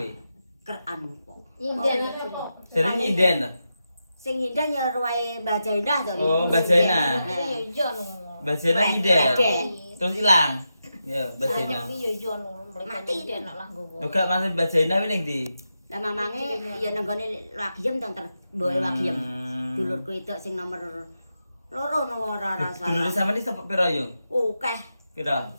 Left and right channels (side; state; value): both; inverted; correlation -0.88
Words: Keran kok. Nyinden. Jare nyinden ta? Sing nyinden ya ruwae Mbah Jainah to. Oh, Mbah Jainah. Iya iya no. Mbah Jena nyinden. Terus ilang. Ya, Mbah Jena. Iya iya no. Mati dia nak lah nggowo. Yo gak maksud Mbah Jena kuwi ning ndi? Lah mamange ya nang gone Wagiem to mboke Wagiem. Dulurku itu sing nomor loro no ora Dulure salah. sampeyan iki sapa pira Yung? Akeh Pira?